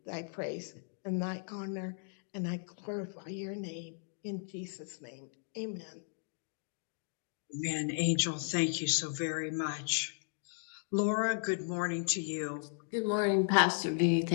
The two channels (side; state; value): right; silent; digital silence